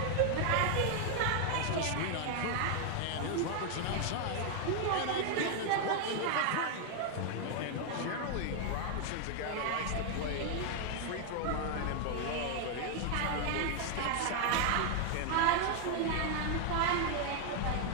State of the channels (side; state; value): both; different; correlation 0.00